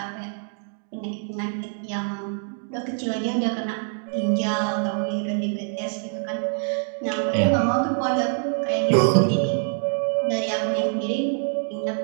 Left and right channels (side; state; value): left; silent; 62 dB below the other